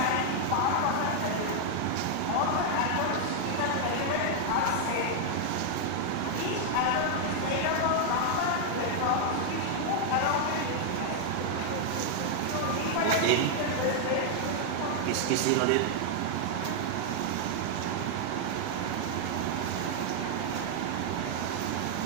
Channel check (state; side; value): different; both; correlation 0.00